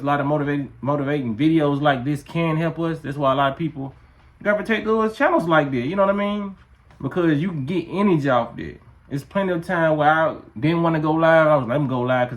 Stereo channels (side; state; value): both; identical; correlation 1.00